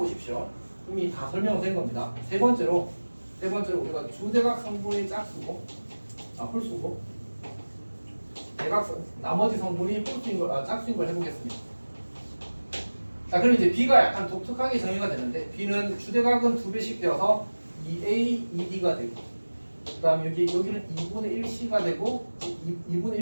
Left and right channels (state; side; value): inverted; both; correlation -1.00